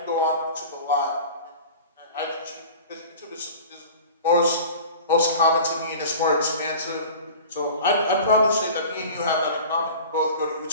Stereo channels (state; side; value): inverted; both; correlation -0.39